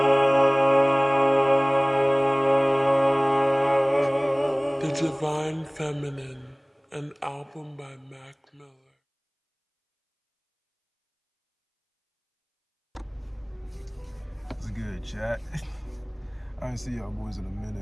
Divine Feminine, an album by Mac Miller. It's good, chat. I ain't see y'all boys in a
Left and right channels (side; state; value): both; identical; correlation 1.00